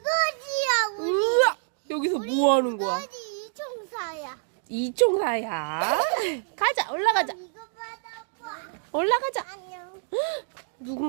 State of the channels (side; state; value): left; silent; 60 dB below the other